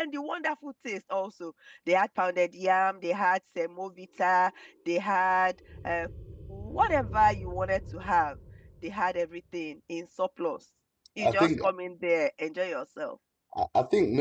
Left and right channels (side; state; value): both; identical; correlation 1.00